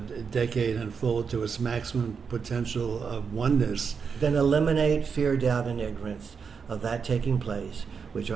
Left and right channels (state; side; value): quieter; left; 6.0 dB